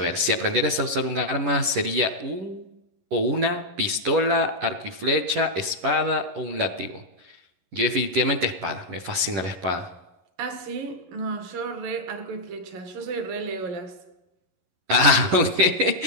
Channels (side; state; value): left; late; 11 ms